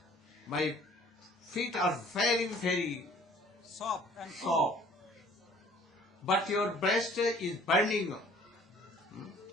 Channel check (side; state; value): both; normal; correlation 0.54